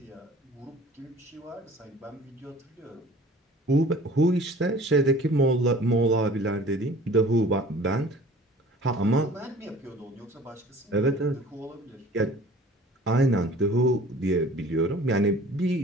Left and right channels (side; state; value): both; normal; correlation 0.47